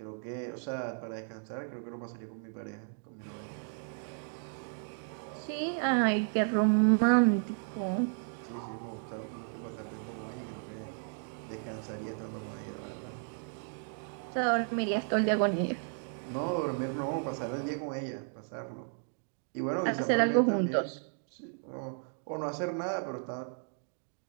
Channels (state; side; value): silent; left; 55 dB below the other